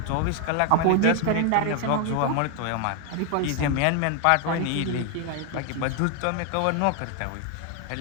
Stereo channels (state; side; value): different; both; correlation 0.01